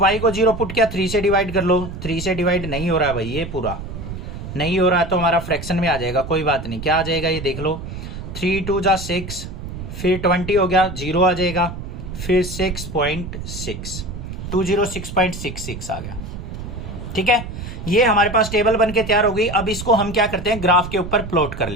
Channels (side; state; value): right; noise; rumble, 9 dB below the sound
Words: को 0 पुट किया, 3 से डिवाइड कर लो, 3 से डिवाइड नहीं हो रहा है भाई, ये पूरा नहीं हो रहा है तो हमारा फ्रैक्शन में आ जाएगा, कोई बात नहीं। क्या आ जाएगा ये देख लो, 3 2 जा 6, फिर 20 हो गया, 0 आ जाएगा, फिर 6.6, 206.66 आ गया। ठीक है, ये हमारे पास टेबल बन के तैयार हो गई। अब इसको हम क्या करते हैं, ग्राफ के ऊपर प्लॉट कर